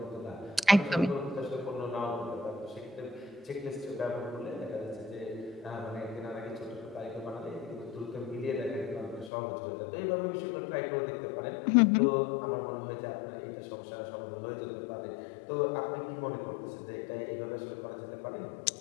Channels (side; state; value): right; drops out; at 9.3 s